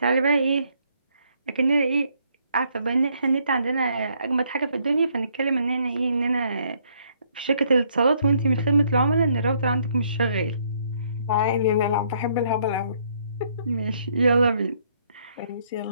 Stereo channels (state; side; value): inverted; both; correlation -0.69